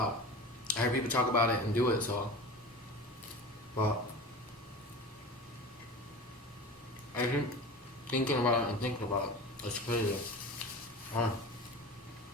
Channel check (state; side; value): normal; both; correlation 0.33